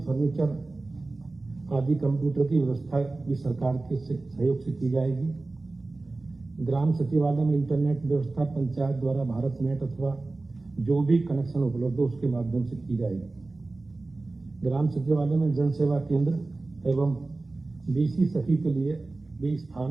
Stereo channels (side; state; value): left; quieter; 3.3 dB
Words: आदि कंप्यूटर की व्यवस्था भी सरकार के सहयोग से की जाएगी। ग्राम सचिवालय में इंटरनेट व्यवस्था पंचायत द्वारा भारत नेट अथवा जो भी कनेक्शन उपलब्ध हो उसके माध्यम से की जाएगी। ग्राम सचिवालय में जन सेवा केंद्र एवं BC सखी के लिए भी